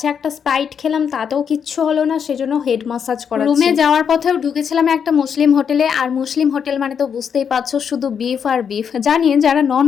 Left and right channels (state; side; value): quieter; right; 7.3 dB